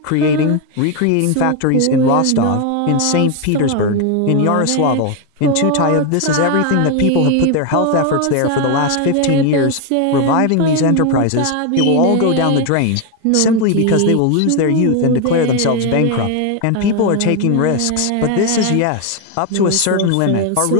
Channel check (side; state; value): both; different; correlation 0.01